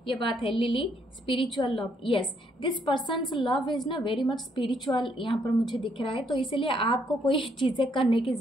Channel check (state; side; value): normal; both; correlation 0.71